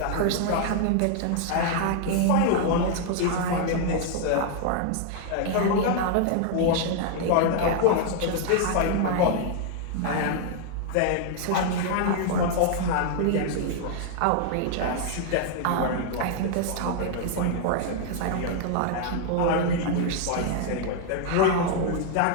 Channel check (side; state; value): both; different; correlation 0.00